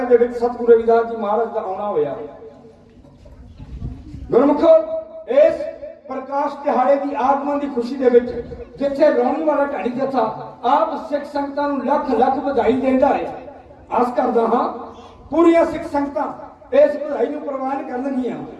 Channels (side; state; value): both; identical; correlation 1.00